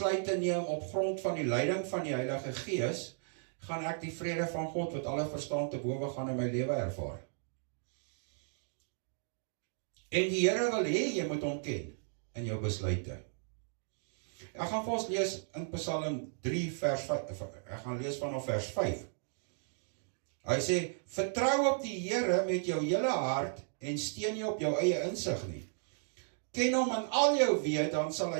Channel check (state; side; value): silent; left; digital silence